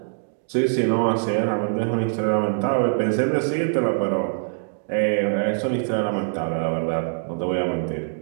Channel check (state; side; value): silent; left; digital silence